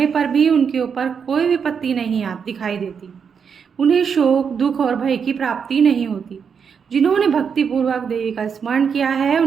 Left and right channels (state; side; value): quieter; left; 6.6 dB